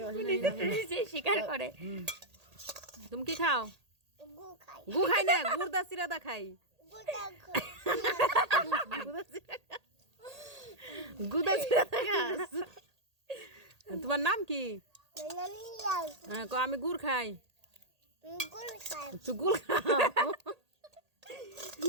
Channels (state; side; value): late; left; 1.8 ms